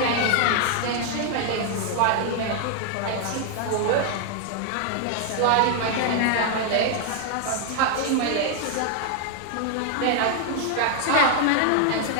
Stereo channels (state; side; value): different; both; correlation 0.00